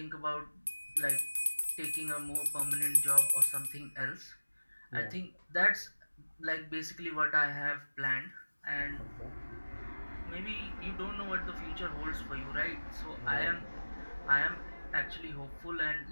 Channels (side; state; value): both; inverted; correlation -1.00